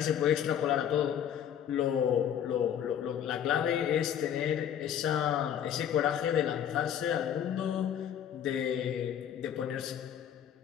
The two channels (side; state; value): right; quieter; 9.5 dB